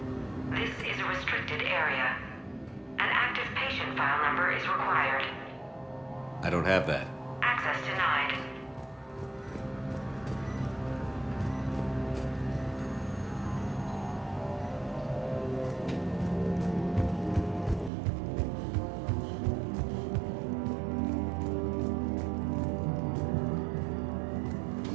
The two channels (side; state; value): left; drops out; at 17.9 s